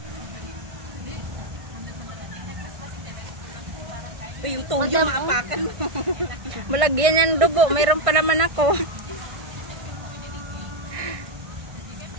Yung toyo maapakan mo. Malagyan yan dugo, mayroon pa naman ako.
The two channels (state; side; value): late; left; 1.6 ms